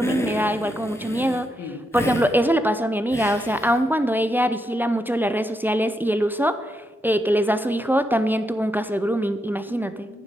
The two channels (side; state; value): both; normal; correlation 0.82